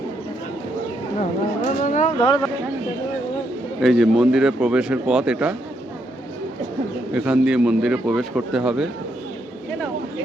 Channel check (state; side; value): normal; both; correlation 0.77